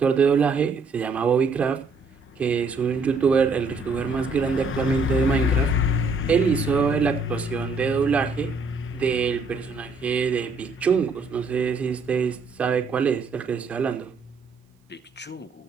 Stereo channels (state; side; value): quieter; left; 3.7 dB